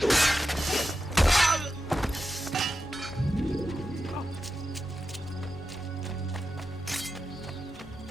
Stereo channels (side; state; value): both; normal; correlation 0.90